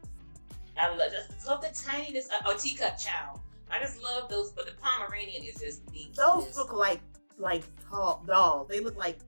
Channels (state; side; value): inverted; both; correlation -1.00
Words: I love the tinyness. Teacup chow. I just love those, but the Pomeranian is just the. Those look like tall dolls. They look like